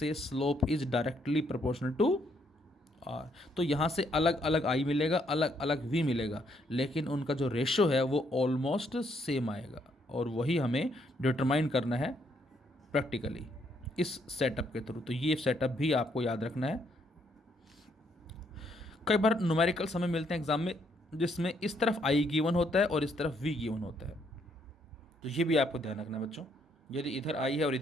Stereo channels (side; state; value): both; normal; correlation 0.72